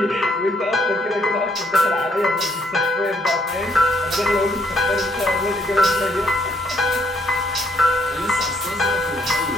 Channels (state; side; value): normal; both; correlation 0.70